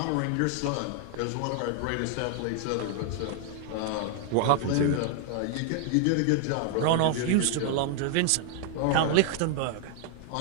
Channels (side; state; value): both; different; correlation 0.00